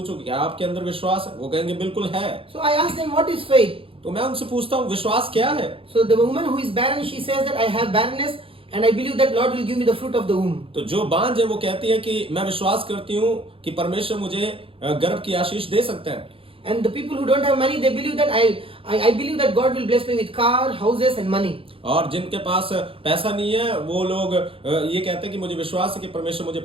कि क्या आपके अंदर विश्वास है, वो कहेंगे बिल्कुल है। So I ask them, what is faith? तो मैं उनसे पूछता हूँ विश्वास क्या है? So the woman who is barren, she says that I have barrenness and I believe that Lord will give me the fruit of the womb. तो जो बांझ है वो कहती है कि मैं विश्वास करती हूँ कि परमेश्वर मुझे गर्भ की आशीष दे सकता है। And the people who don't have money, they believe that I believe that God will bless me with car, houses and money. और जिनके पास पैसा नहीं है वो लोग ये कहते हैं कि मुझे विश्वास है कि परमेश्वर मुझे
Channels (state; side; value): late; left; 0.27 ms